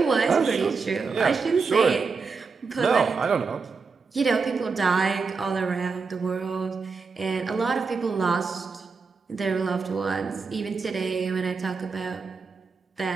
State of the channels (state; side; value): quieter; left; 4.8 dB